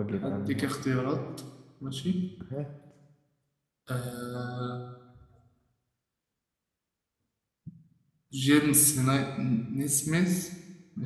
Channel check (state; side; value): identical; both; correlation 1.00